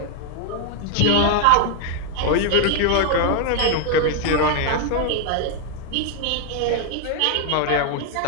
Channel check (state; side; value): different; both; correlation 0.00